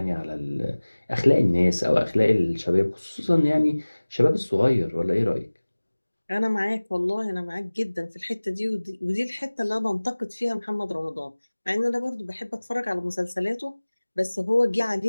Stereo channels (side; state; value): both; inverted; correlation -1.00